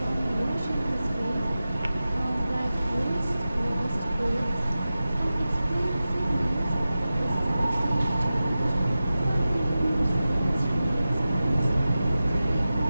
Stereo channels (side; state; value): both; inverted; correlation -0.94